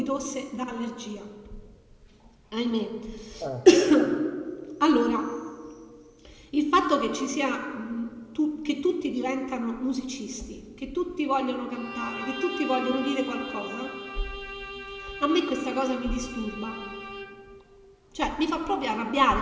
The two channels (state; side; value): identical; both; correlation 1.00